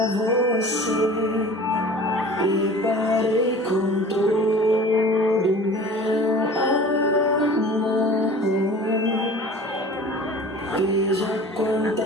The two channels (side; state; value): both; normal; correlation 0.42